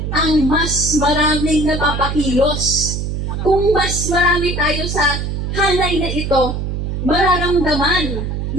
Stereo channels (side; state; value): right; noise; hum, 3 dB below the sound